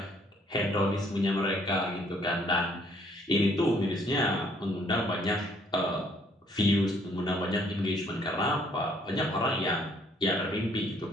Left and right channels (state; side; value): normal; both; correlation 0.64